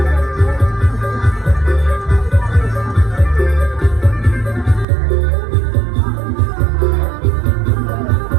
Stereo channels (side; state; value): left; drops out; at 4.9 s